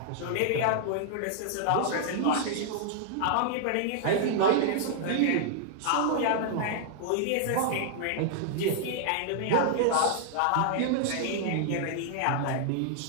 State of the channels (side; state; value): both; different; correlation -0.01